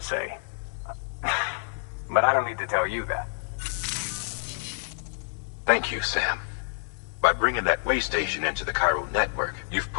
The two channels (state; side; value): silent; right; digital silence